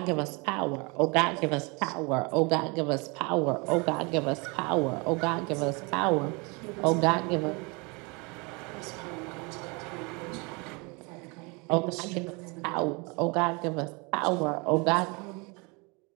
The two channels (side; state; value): left; quieter; 29.3 dB